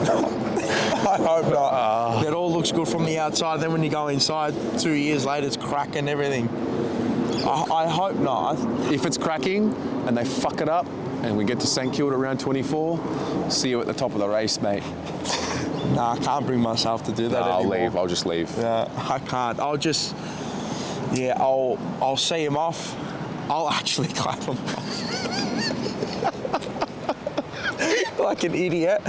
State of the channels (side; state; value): both; identical; correlation 1.00